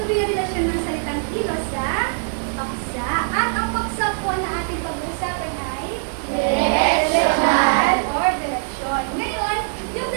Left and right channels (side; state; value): left; silent; 62 dB below the other